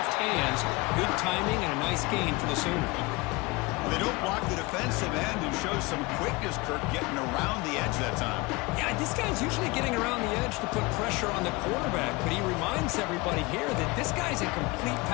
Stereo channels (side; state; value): right; quieter; 24.3 dB